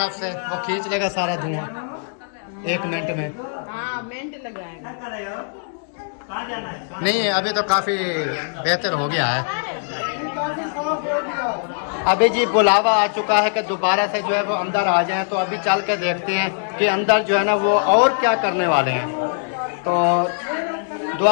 से, वो खींच लेगा सारा धुआं 1 मिनट में। हाँ मिनट लगाएंगे। कहाँ जाना है? नहीं अभी तो काफी बेहतर हो गया है। अभी जी बुलावा आ चुका है कि दोबारा से जो है वो अंदर आ जाएं, तो अभी चल के देखते हैं कि अंदर जो है ना वो और क्या करने वाले हैं। तो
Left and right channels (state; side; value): silent; right; digital silence